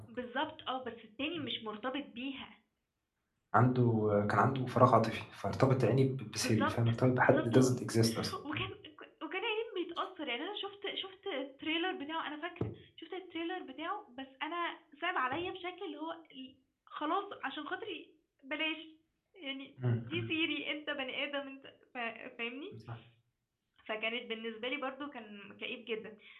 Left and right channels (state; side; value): identical; both; correlation 1.00